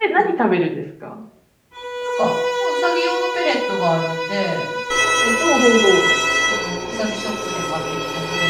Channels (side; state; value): both; identical; correlation 1.00